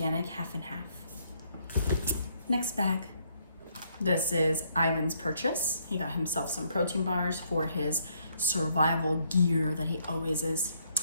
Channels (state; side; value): inverted; both; correlation -0.70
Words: half and half. Next bag. This is Ivan's purchase. He got himself some protein bars for his survival gear that he always is